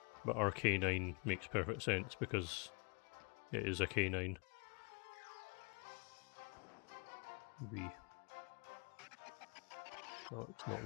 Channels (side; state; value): right; quieter; 34.9 dB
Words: But Arcanine makes perfect sense because it is a canine. B. No, it's not